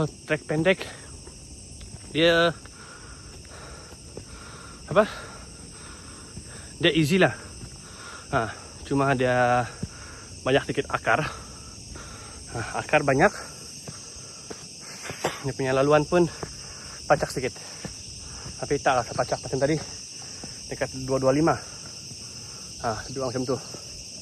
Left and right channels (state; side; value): identical; both; correlation 1.00